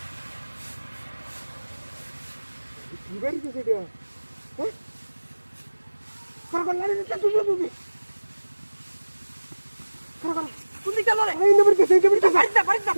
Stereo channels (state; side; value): inverted; both; correlation -1.00